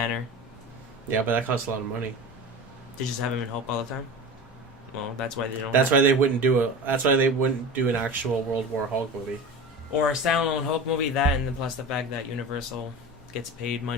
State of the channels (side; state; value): both; normal; correlation 0.32